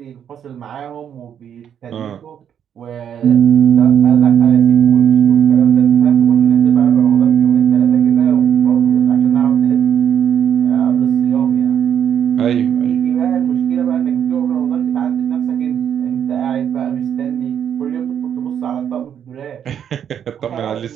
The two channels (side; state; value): left; quieter; 8.9 dB